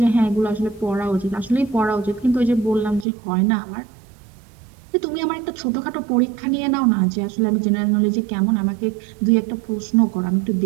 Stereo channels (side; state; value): left; drops out; at 3.1 s